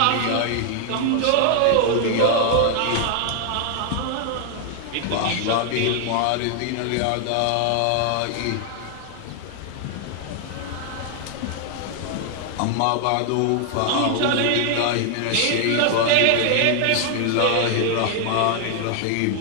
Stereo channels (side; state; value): both; different; correlation 0.00